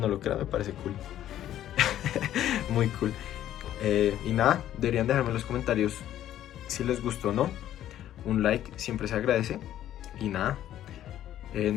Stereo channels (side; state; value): right; quieter; 12.0 dB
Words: lo crean, me parece cool. Muy cool. Y nada, deberían dejarme en los comentarios si les gustó o no. Un like siempre se agradece. Y nada,